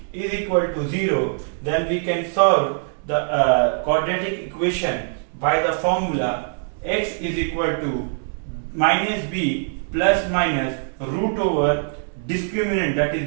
is equal to 0, then we can solve the quadratic equation by the formula x is equal to minus b plus minus root over discriminant, that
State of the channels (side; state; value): left; silent; digital silence